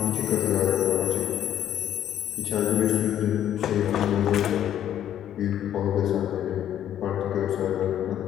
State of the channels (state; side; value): quieter; right; 10.8 dB